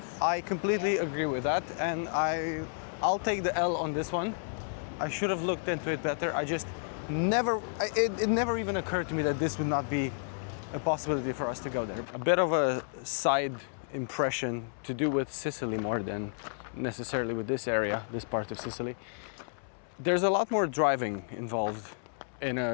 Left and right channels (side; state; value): right; silent; 57 dB below the other